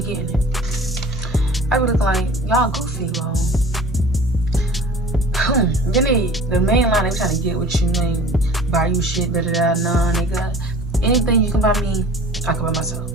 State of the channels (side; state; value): both; normal; correlation 0.44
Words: getting it. I be looking like y'all goofy, bro. Then the main line they trying to get with you, ain't buy you shit, da da da. Nah, nigga. Anything you can buy me, I can buy myself.